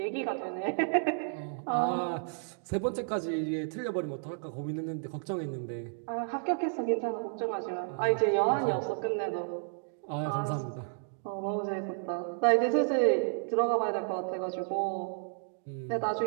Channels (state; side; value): silent; left; digital silence